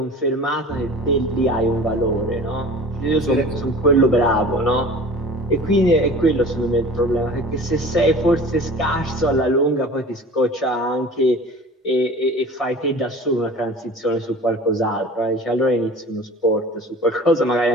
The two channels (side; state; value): both; normal; correlation 0.41